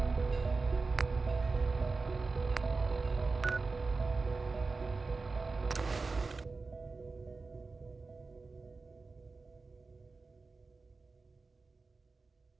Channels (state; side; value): quieter; left; 4.0 dB